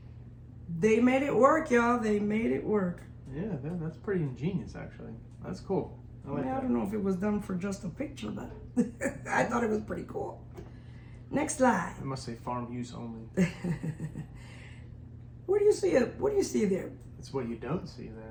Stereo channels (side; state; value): both; identical; correlation 1.00